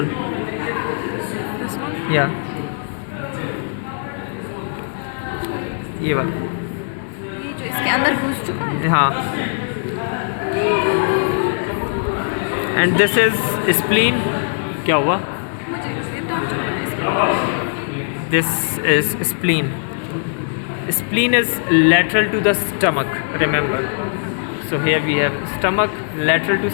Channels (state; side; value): silent; right; 66 dB below the other